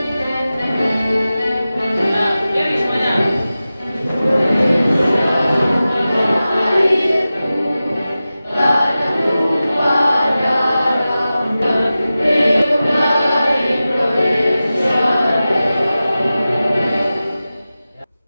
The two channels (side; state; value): both; inverted; correlation -0.95